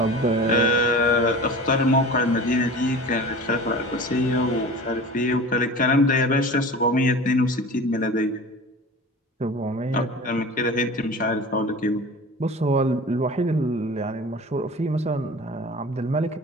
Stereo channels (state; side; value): normal; both; correlation 0.37